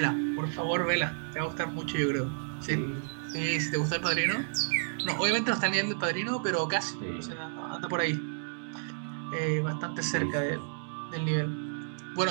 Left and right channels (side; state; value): left; silent; digital silence